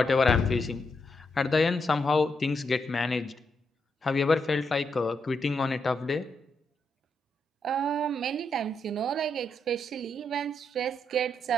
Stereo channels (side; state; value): both; normal; correlation 0.80